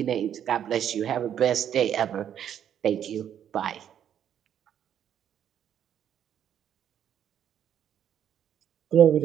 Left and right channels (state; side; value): quieter; left; 9.5 dB